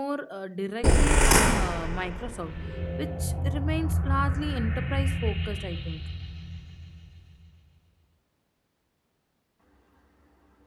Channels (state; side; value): identical; both; correlation 1.00